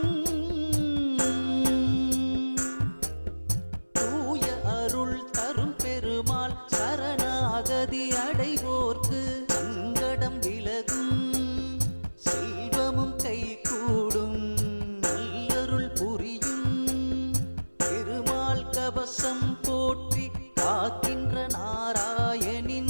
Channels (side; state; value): both; inverted; correlation -1.00